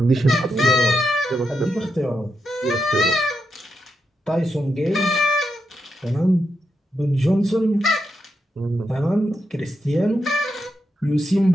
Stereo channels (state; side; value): normal; both; correlation 0.84